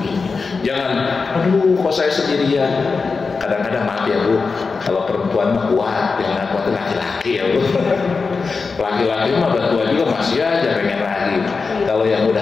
Jangan, aduh kok saya sendirian. Kadang-kadang maaf ya Bu, kalau perempuan mah kuat, yang kuat laki-laki ya Bu. Laki-laki mah tua juga masih aja pengen lagi. Kalau yang udah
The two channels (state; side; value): quieter; right; 4.6 dB